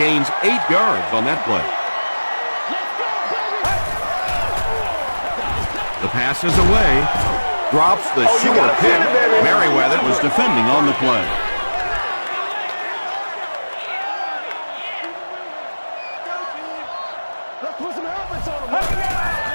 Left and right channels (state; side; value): inverted; both; correlation -1.00